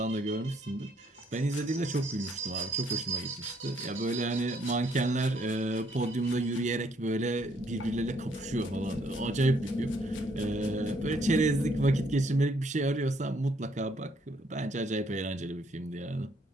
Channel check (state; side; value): normal; both; correlation 0.68